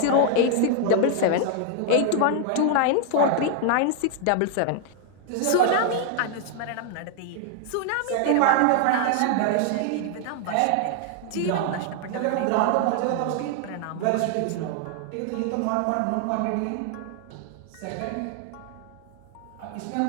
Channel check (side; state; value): both; different; correlation 0.00